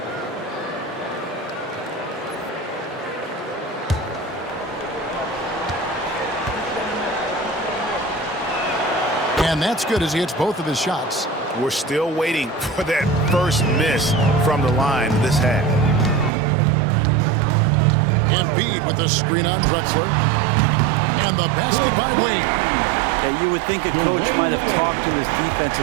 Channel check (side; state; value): left; drops out; at 16.3 s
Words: And that's good as he hits both of his shots. We're still waiting for that first miss from the line this half. Embiid with the screen on Drexler. And the basket by Wade. Yeah, you would think a coach might have talked to his defense